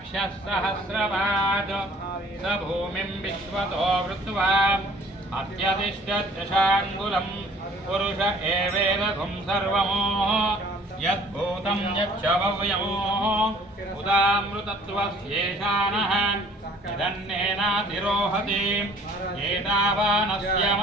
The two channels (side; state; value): both; normal; correlation 0.54